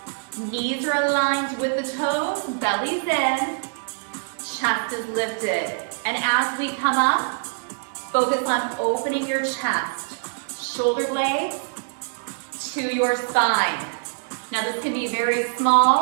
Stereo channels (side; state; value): left; silent; 63 dB below the other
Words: knees are aligned with the toes, belly's in, chest is lifted. And as we come up, focus on opening your chest, shoulder blades to your spine. Now this can be very